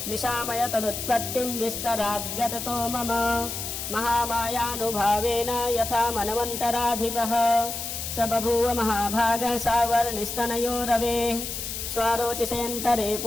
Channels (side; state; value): left; noise; hiss, 5 dB below the sound